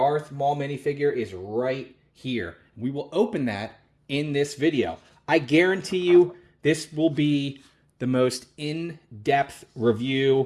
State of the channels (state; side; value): identical; both; correlation 1.00